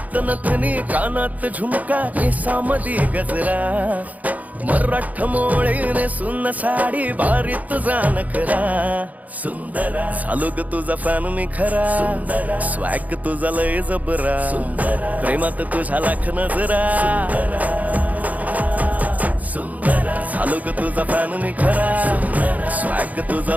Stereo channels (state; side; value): late; left; 0.076 ms